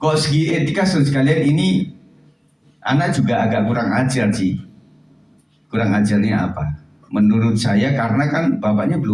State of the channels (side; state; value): both; identical; correlation 1.00